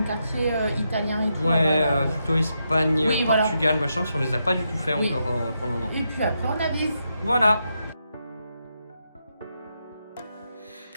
quartier italien et tout. Ouais, plutôt Espagne, Portugal, machin, si on les a pas du tout fait encore pour le moment. Et puis après on avise. Voilà.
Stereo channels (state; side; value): inverted; both; correlation -0.83